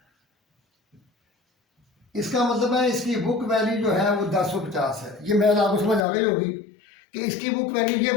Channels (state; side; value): drops out; right; at 6.1 s